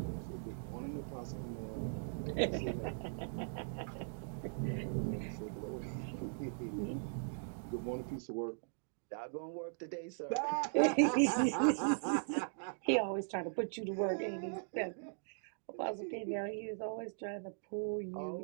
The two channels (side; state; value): left; silent; digital silence